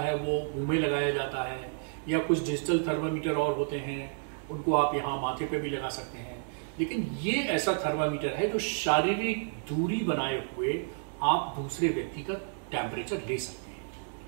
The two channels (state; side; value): silent; left; digital silence